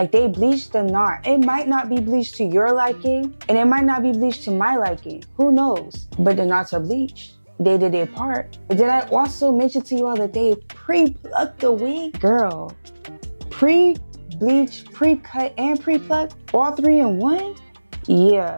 they bleached the knot. It might not be bleached to your liking and it might not be bleached to my liking. Who knows? But the knots are bleached. They did their part. Did I also mention to you all that they pre-plucked the wig? Girl, pre-bleach, pre-cut, and pre-plucked, all three in one?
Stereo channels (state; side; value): inverted; both; correlation -1.00